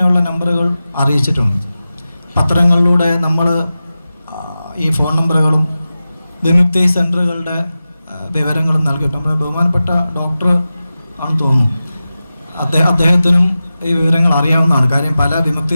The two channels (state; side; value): inverted; both; correlation -0.94